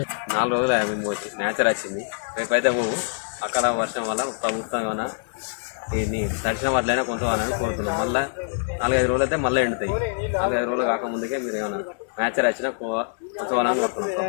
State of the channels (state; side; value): silent; right; digital silence